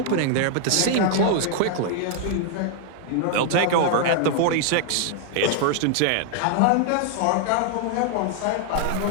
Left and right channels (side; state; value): both; different; correlation 0.00